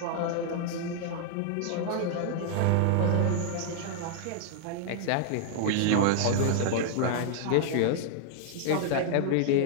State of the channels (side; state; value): both; different; correlation 0.00